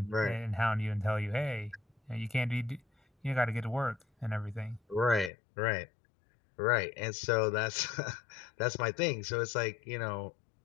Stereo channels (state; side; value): drops out; right; at 5.3 s